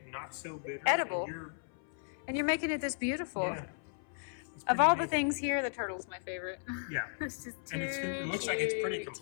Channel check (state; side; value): silent; right; 54 dB below the other